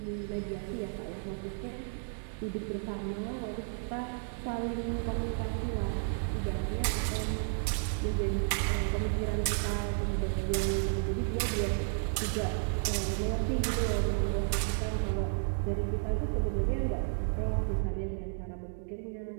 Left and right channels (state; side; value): silent; left; digital silence